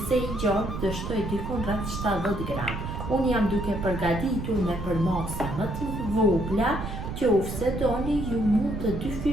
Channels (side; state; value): right; noise; rumble, 6 dB below the sound